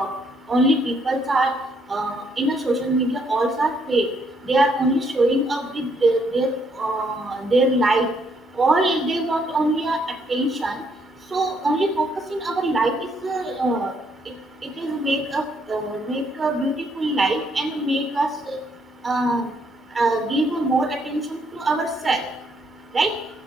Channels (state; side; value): normal; both; correlation 0.71